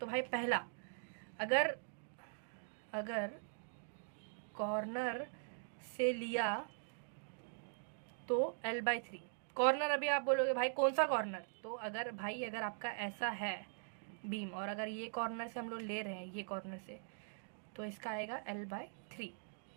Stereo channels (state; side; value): silent; left; digital silence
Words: भाई पहला, अगर कॉर्नर से लिया तो L/3, कॉर्नर अभी आप बोलोगे भाई कौन सा कॉर्नर, तो अगर आपका ऐसा है बीम, और अगर ये कॉर्नर से हम लोग ले रहे हैं, ये कॉर्नर से, तो इसका आएगा L/3,